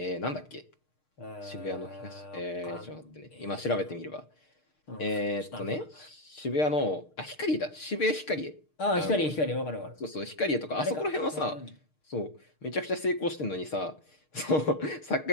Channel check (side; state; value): right; late; 6.5 ms